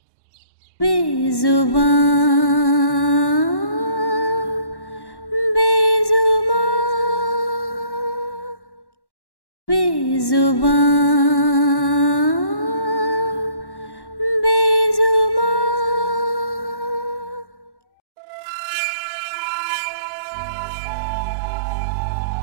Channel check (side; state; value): right; late; 1.1 ms